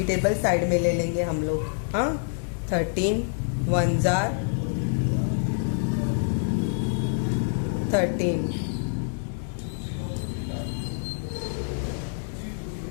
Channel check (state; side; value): silent; right; digital silence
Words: टेबल साइड में ले लेंगे हम लोग। हाँ, 13 1 जार 13,